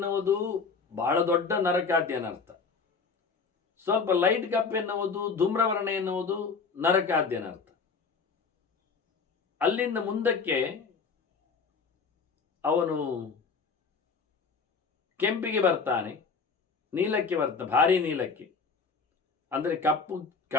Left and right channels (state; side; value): quieter; right; 5.0 dB